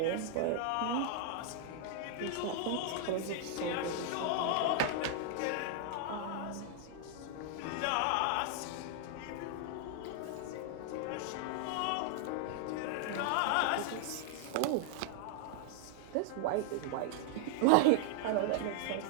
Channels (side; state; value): both; different; correlation 0.00